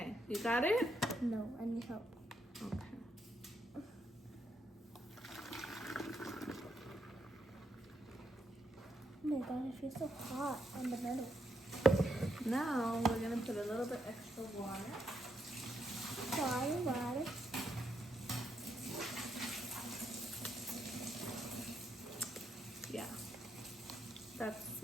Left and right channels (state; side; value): normal; both; correlation 0.79